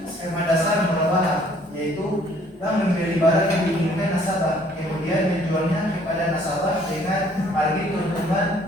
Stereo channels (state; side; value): normal; both; correlation 0.60